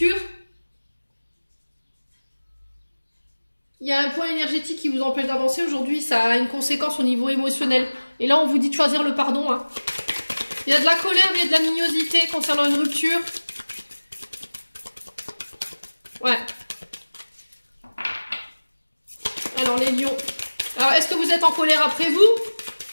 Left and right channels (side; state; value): both; inverted; correlation -1.00